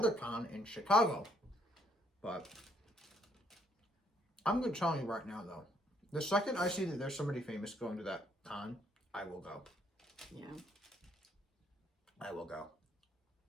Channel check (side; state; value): both; normal; correlation 0.68